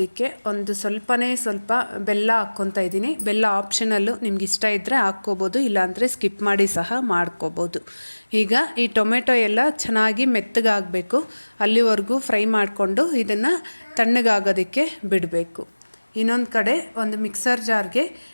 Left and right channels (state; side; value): inverted; both; correlation -1.00